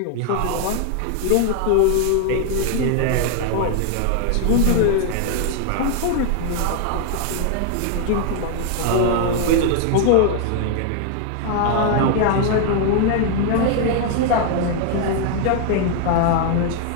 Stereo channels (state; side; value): different; both; correlation 0.00